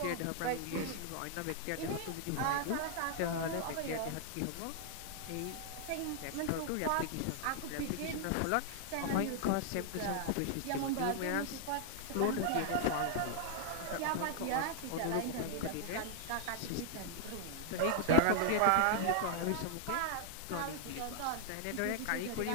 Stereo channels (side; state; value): both; different; correlation -0.01